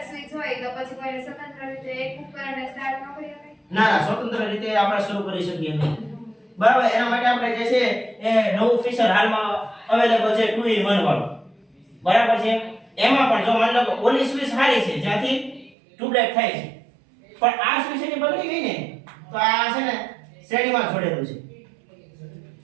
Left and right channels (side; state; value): left; drops out; at 15.7 s